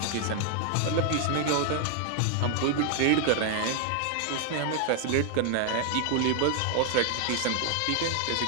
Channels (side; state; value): both; different; correlation 0.00